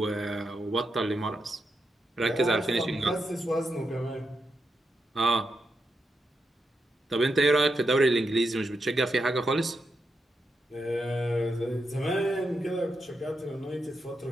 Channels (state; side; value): normal; both; correlation 0.84